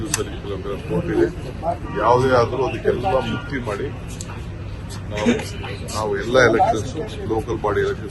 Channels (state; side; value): identical; both; correlation 1.00